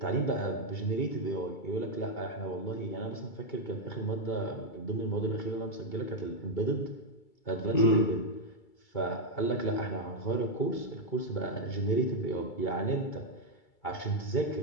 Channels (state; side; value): late; right; 2.3 ms